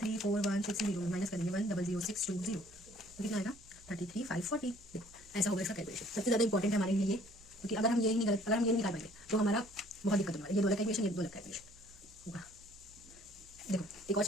माइनस करेंगे 1,00620, तो कितना आएगा 33,540। देखो ऐसा होगा इसका कैलकुलेशन। सबसे ज़्यादा इंपॉर्टेंट है हमारे लिए ये, क्योंकि अगर हम ये नहीं निकाल पाएंगे तो हमारा बहुत दिक्कत होगा। ये 2 अलग कैलकुलेशन, ये 2 अलग कैलकुलेशन होगा। देखो एक और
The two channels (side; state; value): right; noise; hum, 25 dB below the sound